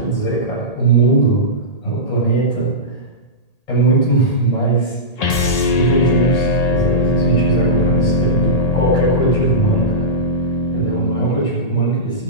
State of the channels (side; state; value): right; late; 1.8 ms